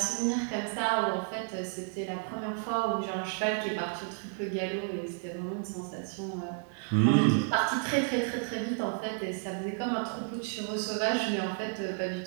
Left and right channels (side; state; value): left; silent; 57 dB below the other